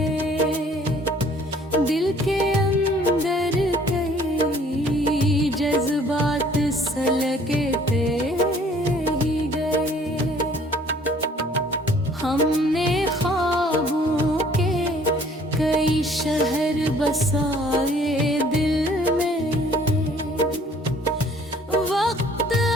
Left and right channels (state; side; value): normal; both; correlation 0.57